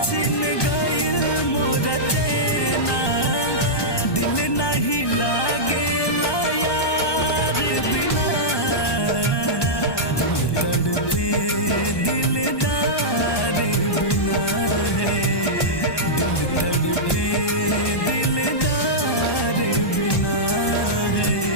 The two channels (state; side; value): late; right; 1.2 ms